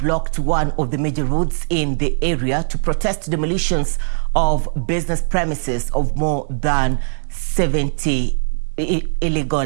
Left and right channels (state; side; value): silent; left; digital silence